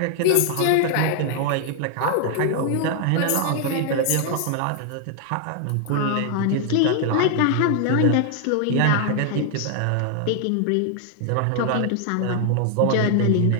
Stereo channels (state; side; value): different; both; correlation 0.00